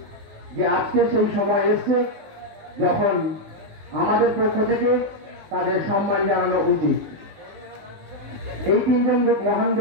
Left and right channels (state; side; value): late; left; 19 ms